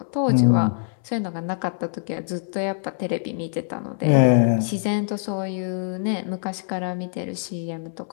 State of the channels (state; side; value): silent; right; 62 dB below the other